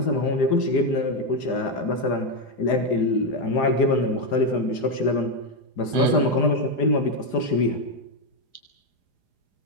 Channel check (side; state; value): right; late; 4.9 ms